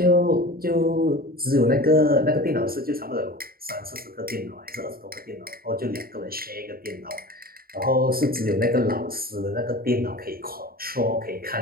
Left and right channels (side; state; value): left; late; 0.43 ms